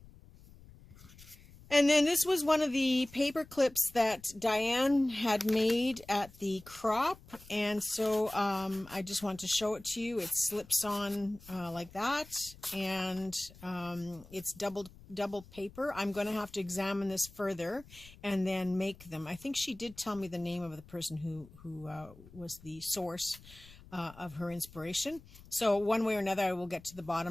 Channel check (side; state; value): left; noise; rumble, 21 dB below the sound